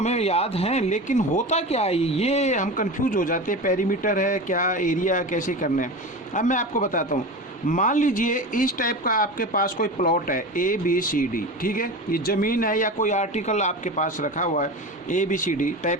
याद हैं, लेकिन होता क्या है, ये हम कंफ्यूज हो जाते हैं, पेरीमीटर है क्या, एरिया कैसे करना है। अब मैं आपको बताता हूँ। मान लीजिए इस टाइप का आपके पास कोई प्लॉट है ABCD, ठीक है, ये ज़मीन है या कोई आर्टिकल आपके पास रखा हुआ है, ABCD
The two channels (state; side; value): normal; both; correlation 0.28